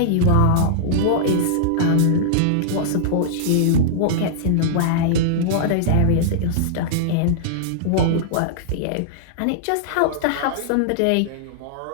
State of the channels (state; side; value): different; both; correlation -0.02